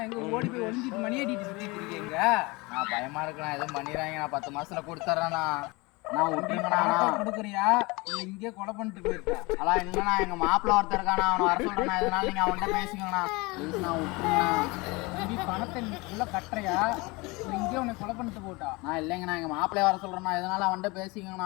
எங்க ஓடி போய் ஒளிஞ்சிட்டு மணி அடிட்டு சுத்திட்டு இருக்கீங்க. நான் பயமா இருக்குண்ணா, எதுவும் பண்ணிடுறாங்க. நான் 10 மாசத்துல கொடுத்துறேண்ணா. நான் விட்டுருங்கண்ணா. கொடுக்குறியா இல்ல இங்கே கொலை பண்ணிட்டு போயிருக்கா? அதான் இல்லைண்ணா, எங்க மாப்பிள்ள ஒருத்தர் இருக்காண்ணா, அவனை வர சொல்றேண்ணா. இதனால நீங்க அவன்கிட்ட பேசிக்கோங்கண்ணா. ப்ளீஸ் நான் விட்டுருங்கண்ணா. தம்பி பணத்தை நீ உள்ள கட்டுறியா இல்லை இங்கே உன்னை கொலை பண்ணிட்டு போட்டா? நான் இல்லைங்கண்ணா, எங்க மாப்பிள்ளைய வர சொல்றேண்ணா. இதனால அவன்கிட்ட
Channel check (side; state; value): right; quieter; 24.9 dB